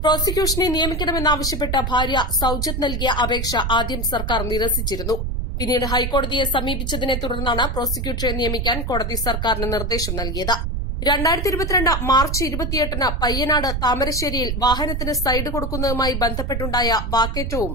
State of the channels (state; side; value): noise; right; rumble, 2 dB below the sound